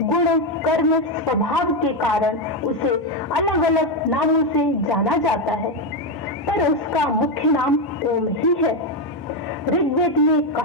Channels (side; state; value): both; normal; correlation 0.07